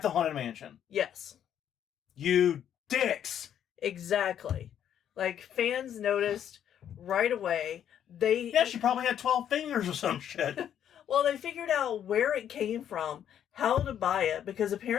the Haunted Mansion. Yes. You dicks! Exactly. Like, fans noticed right away. She probably had 12 fingers or some shit. Well, they figured out where it came from, how to buy it, because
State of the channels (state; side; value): quieter; right; 9.7 dB